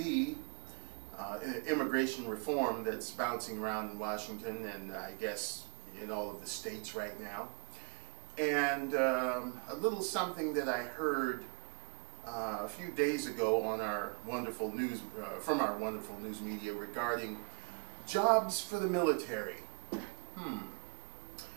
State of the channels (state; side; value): quieter; left; 33.5 dB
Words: immigration reform that's bouncing around in Washington and I guess in all of the states right now. And a little something that I heard a few days ago on our wonderful news, from our wonderful news media regarding jobs for the military.